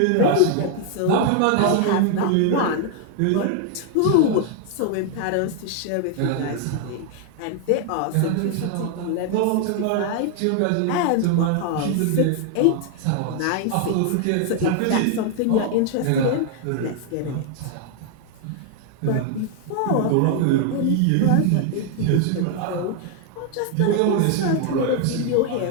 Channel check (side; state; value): both; different; correlation 0.00